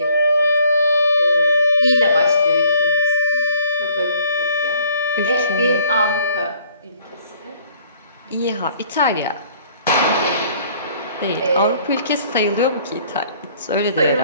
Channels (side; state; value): both; inverted; correlation -0.58